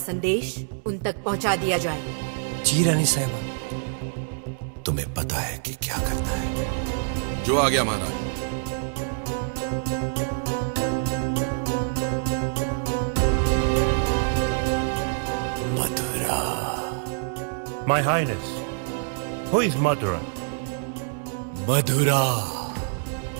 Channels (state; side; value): silent; left; 61 dB below the other